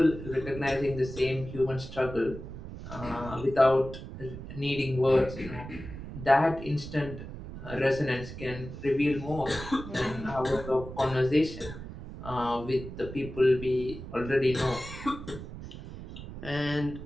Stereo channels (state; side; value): noise; right; rumble, 11 dB below the sound